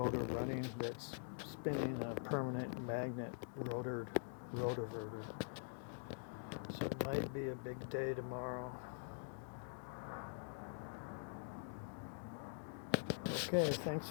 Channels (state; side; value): silent; right; digital silence